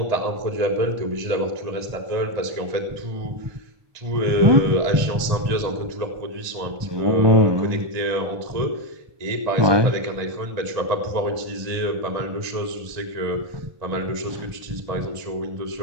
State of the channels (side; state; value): left; late; 1.7 ms